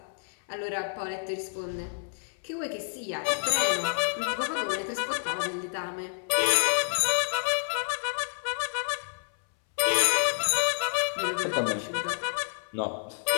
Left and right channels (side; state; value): right; silent; 59 dB below the other